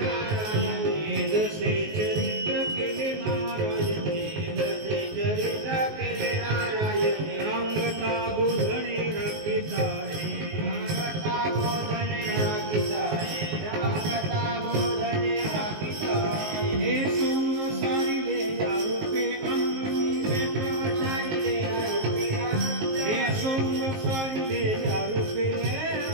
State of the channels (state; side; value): late; left; 19 ms